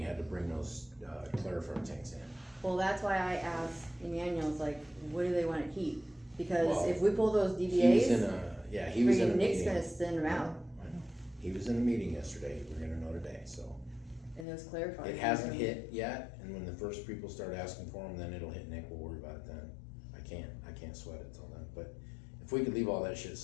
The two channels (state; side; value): drops out; right; at 14.5 s